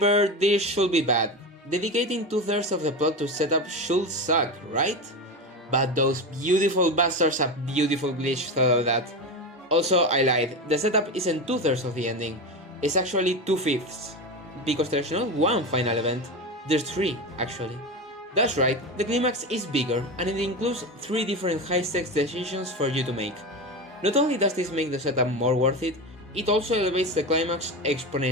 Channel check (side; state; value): both; normal; correlation 0.21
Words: this should be bad. Dedicating 2/3 of the plot to setup should suck, right? But those beautiful bastards have beautiful glitch thought of that. Also, I lied, the setup isn't 2/3 of the ending, it's actually 2/5. Because there's not one final event, there's 3 actually. That's right, the climax is bigger and it includes 3 different high-stakes decisions for you to make. Not only does this make the setup more worth it, it also elevates the climax